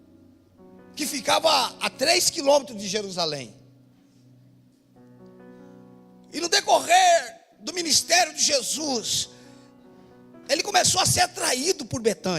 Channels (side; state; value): both; identical; correlation 1.00